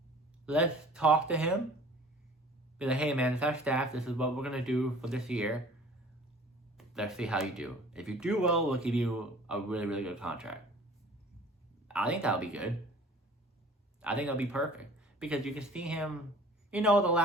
Let's talk to him. Be hey man, it's our staff. This is what we're going to do for this year. Let's see how you do. If you do well, we'll give you a really, really good contract. I think that'll be good. I think that'll be perfect. Because you can see him the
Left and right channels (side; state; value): both; normal; correlation 0.48